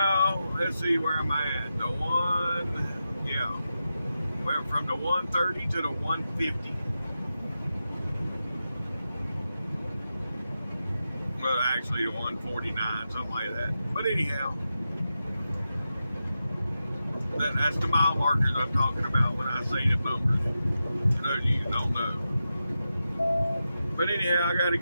let's see where I'm at. Went from the 130 to the 150. Well, actually the 149, something like that. But anyhow, that's the mile markers I'm talking about when I say the numbers. For those of you who don't know. But anyhow, I got to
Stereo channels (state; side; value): inverted; both; correlation -0.90